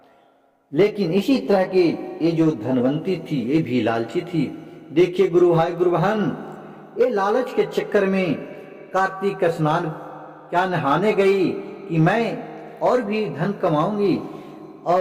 लेकिन इसी तरह के ये जो धनवंती थी, ये भी लालची थी। देखिए गुरु भाई गुरु बहन, ये लालच के चक्कर में कार्तिक स्नान क्या नहाने गई कि मैं और भी धन कमाऊंगी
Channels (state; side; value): identical; both; correlation 1.00